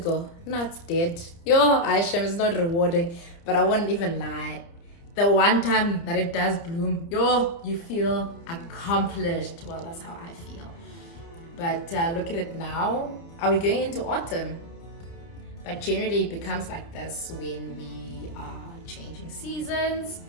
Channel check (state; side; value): late; right; 30 ms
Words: Now it's dead. Yo, Aisha, it's not rewarding, but I wouldn't even lie. The one time that it does bloom, yo, you feel accomplished. Well, that's how I feel. But look at it now. Are we going into autumn? But generally it becomes like this when we are changing seasons.